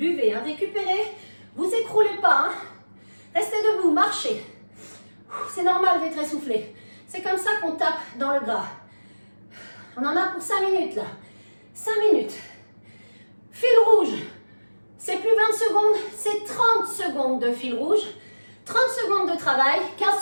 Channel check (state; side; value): inverted; both; correlation -1.00